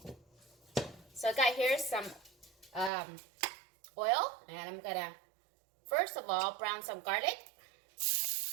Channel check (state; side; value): drops out; left; at 2.9 s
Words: So I got here some oil, and I'm gonna first of all brown some garlic,